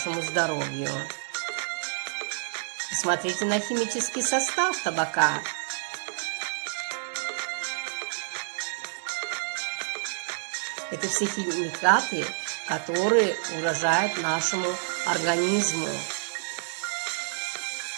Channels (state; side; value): silent; left; digital silence